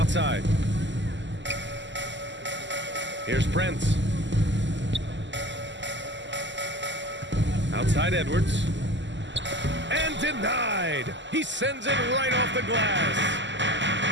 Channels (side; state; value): left; late; 0.53 ms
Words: Here's Prince. Outside Edwards. And denied. He sends it right off the glass.